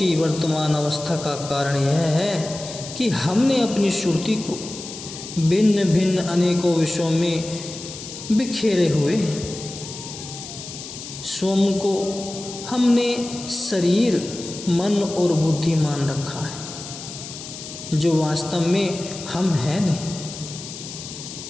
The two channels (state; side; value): noise; left; hiss, 11 dB below the sound